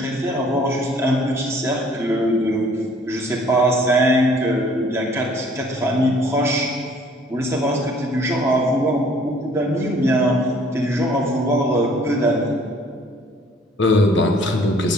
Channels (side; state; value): both; normal; correlation 0.57